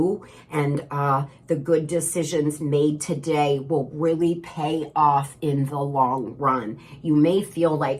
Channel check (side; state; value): both; identical; correlation 1.00